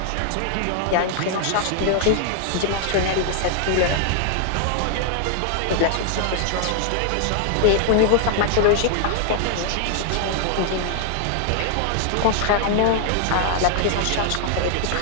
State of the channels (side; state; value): both; different; correlation 0.00